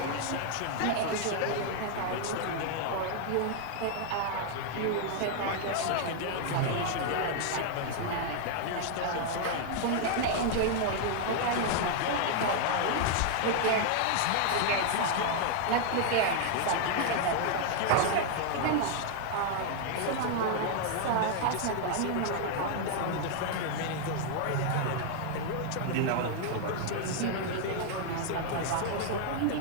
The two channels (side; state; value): both; different; correlation 0.00